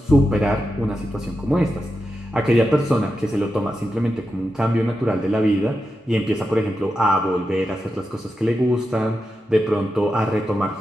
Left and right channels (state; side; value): normal; both; correlation 0.89